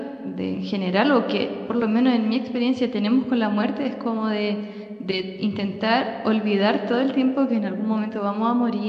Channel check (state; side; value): identical; both; correlation 1.00